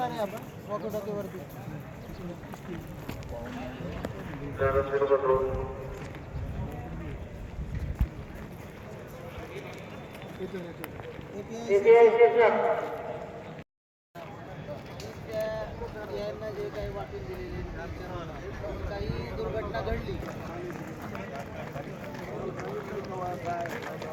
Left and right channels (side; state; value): both; identical; correlation 1.00